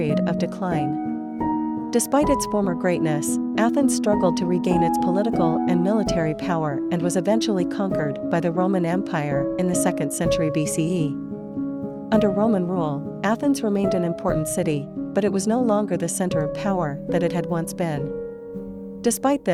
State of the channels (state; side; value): identical; both; correlation 1.00